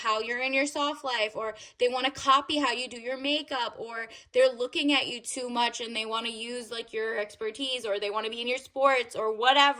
you're in your soft life, or they want to copy how you do your makeup, or they're looking at you too much and they want to use like your expertise, or they want to be in your sports or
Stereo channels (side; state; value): both; identical; correlation 1.00